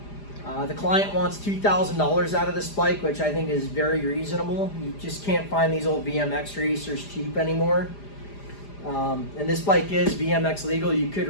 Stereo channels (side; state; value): right; late; 4.9 ms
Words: The client wants $2,000 out of this bike, which I think is very reasonable. You just can't find these old BMX racers cheap anymore. And this bike is BMX legal. You could